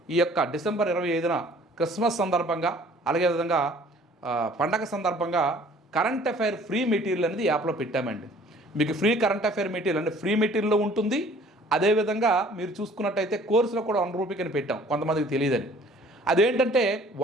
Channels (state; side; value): normal; both; correlation 0.54